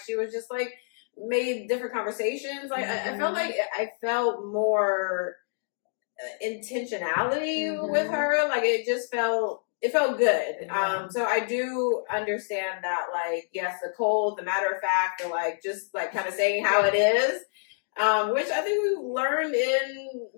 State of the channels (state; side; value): silent; right; digital silence